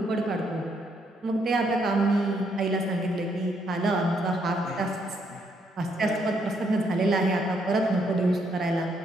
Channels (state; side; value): normal; both; correlation 0.73